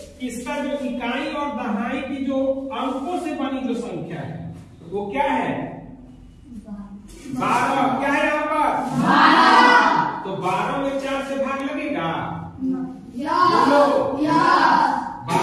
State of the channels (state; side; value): identical; both; correlation 1.00